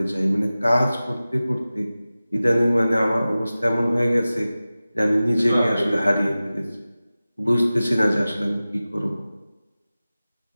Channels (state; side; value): inverted; both; correlation -0.96